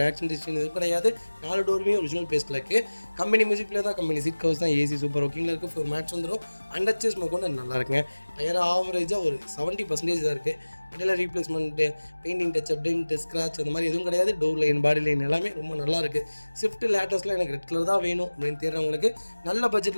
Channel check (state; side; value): inverted; both; correlation -1.00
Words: ஆக்சிடென்ட் எதுவும் கிடையாது. 4 டோருமே ஒரிஜினல் பேஸ்ட்டில் இருக்குது. கம்பெனி மியூசிக் பிளேயர் தான், கம்பெனி சீட் கவர்ஸ் தான், ஏசி சூப்பர் ஒர்க்கிங்கில் இருக்குது. ஃப்ளோர் மேட்ச் வந்துடும். அண்டர்ச்சேஸ் மோகன் நல்லா இருக்குங்க. டயர் ஆவரேஜாக ஒரு 70% தான் இருக்குது. வண்டியில் replacement, painting touch-up, tent, scratch அந்த மாதிரி எதுவும் கிடையாது. டோர் லைன், பாடி லைன் எல்லாமே ரொம்ப நல்லா இருக்குது. ஸ்விஃப்ட் லேட்டஸ்ட்டில் எனக்கு ரெட் கலர் தான் வேணும் அப்படின்னு தேடுறவங்களுக்கு நல்ல